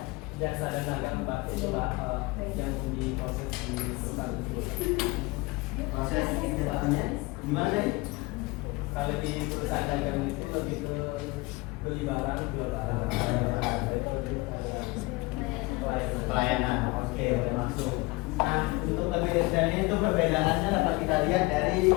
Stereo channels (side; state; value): right; quieter; 23.5 dB